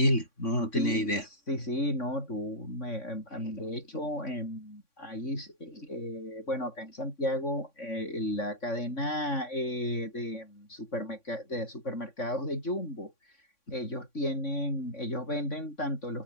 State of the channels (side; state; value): right; late; 3.6 ms